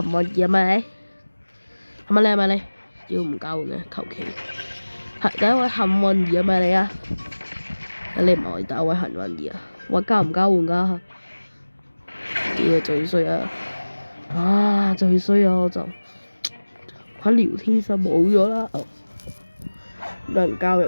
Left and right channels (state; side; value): inverted; both; correlation -1.00